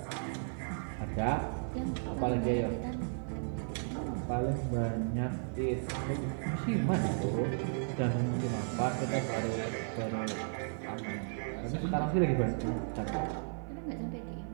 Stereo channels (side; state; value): left; silent; 55 dB below the other